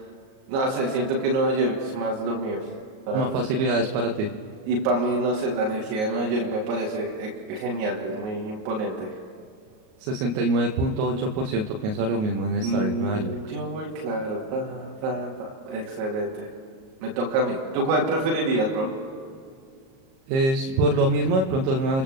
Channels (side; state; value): left; late; 38 ms